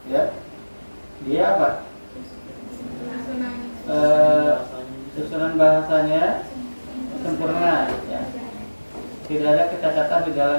ya dia apa? Susunan bahasanya sempurna ya. Tidak ada kecacatan di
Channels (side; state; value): both; inverted; correlation -1.00